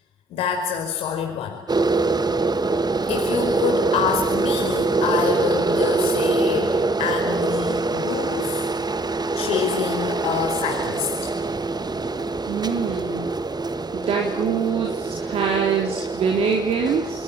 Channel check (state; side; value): normal; both; correlation 0.58